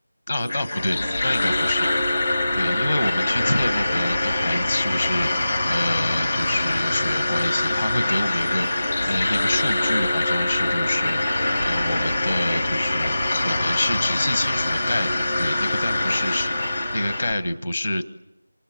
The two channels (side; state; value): both; inverted; correlation -0.94